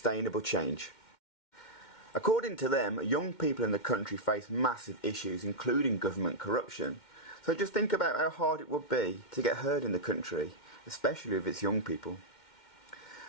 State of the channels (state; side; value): late; right; 2.1 ms